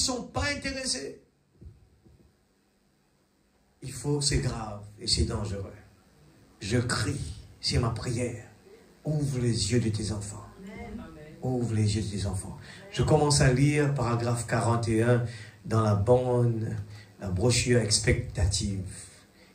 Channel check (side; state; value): both; identical; correlation 1.00